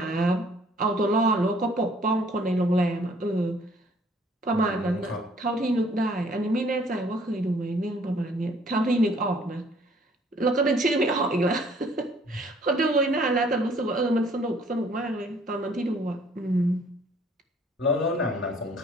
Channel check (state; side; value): normal; both; correlation 0.60